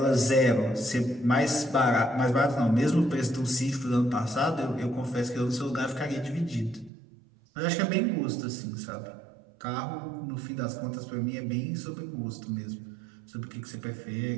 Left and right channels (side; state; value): left; drops out; at 6.9 s